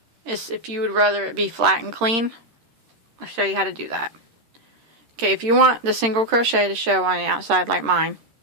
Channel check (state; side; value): late; left; 13 ms